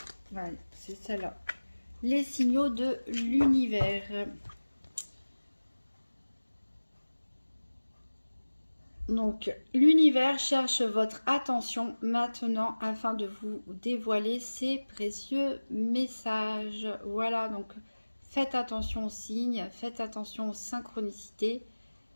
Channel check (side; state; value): both; inverted; correlation -1.00